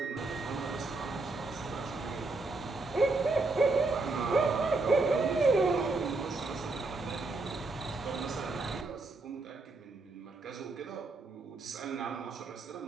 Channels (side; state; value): left; quieter; 3.5 dB